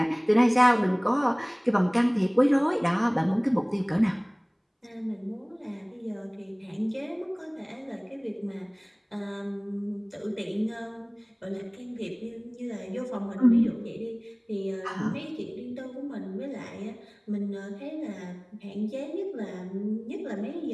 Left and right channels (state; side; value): identical; both; correlation 1.00